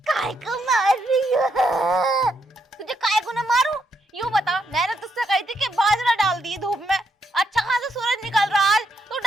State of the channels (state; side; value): normal; both; correlation 0.78